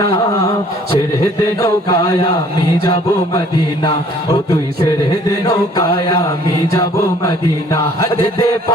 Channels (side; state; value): both; normal; correlation 0.57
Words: না। ছেড়ে দে নৌকায় আমি যাব মদিনা, ও তুই ছেড়ে দে নৌকায় আমি যাব মদিনা। দে দে